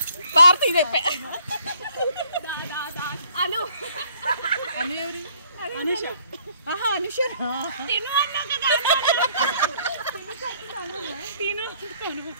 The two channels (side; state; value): both; inverted; correlation -0.62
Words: భారతి అను అను ఎవరు? అనుష. అనుష తిను అన్నా కదా. తిను